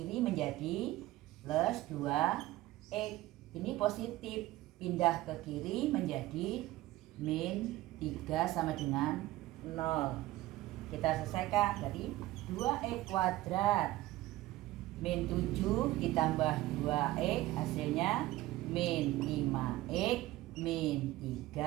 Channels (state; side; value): quieter; left; 16.9 dB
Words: menjadi plus 2x. Ini positif, pindah ke kiri menjadi min 3 sama dengan 0. Kita selesaikan dari 2x kuadrat min 7 ditambah 2x hasilnya min 5x min